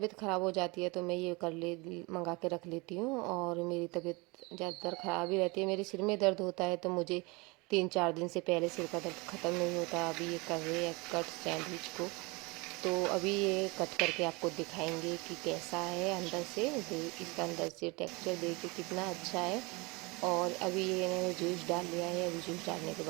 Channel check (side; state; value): left; quieter; 26.5 dB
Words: ख़राब हो जाती है तो मैं ये मंगा के रख लेती हूँ। और मेरी तबीयत ज़्यादातर ख़राब ही रहती है, मेरे सिर में दर्द होता है तो मुझे 3-4 दिन से पहले सिर का दर्द ख़त्म नहीं होता। अभी ये कर रहे हैं कट सैंडविच को, तो अभी ये कट करके आपको दिखाएंगे कि कैसा है अंदर से। इसका अंदर से टेक्सचर देखिए कितना अच्छा है। और अभी ये इन्होंने जूस डाल लिया है, अभी जूस डालने के